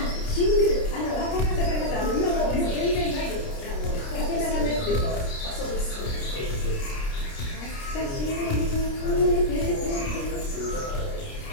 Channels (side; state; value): right; late; 29 ms